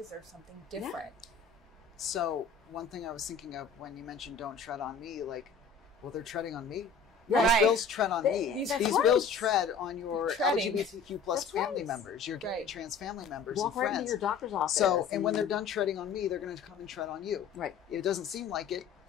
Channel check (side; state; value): right; quieter; 5.4 dB